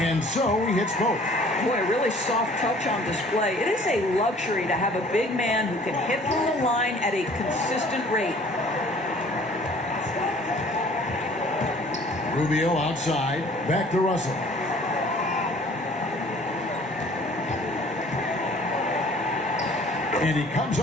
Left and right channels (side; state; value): both; normal; correlation 0.52